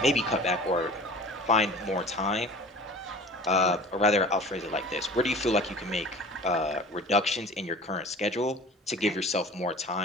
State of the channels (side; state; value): both; normal; correlation 0.42